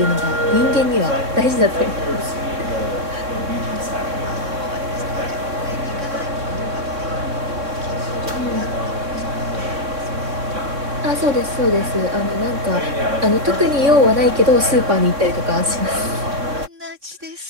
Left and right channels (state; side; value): late; left; 3.6 ms